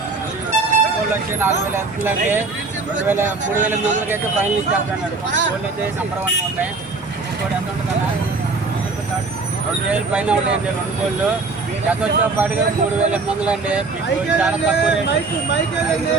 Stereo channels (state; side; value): quieter; left; 3.9 dB